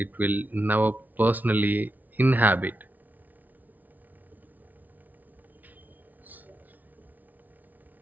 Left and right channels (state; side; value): late; left; 0.081 ms